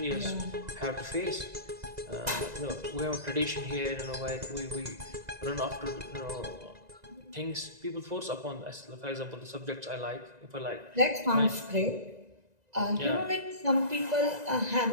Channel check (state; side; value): late; left; 1.9 ms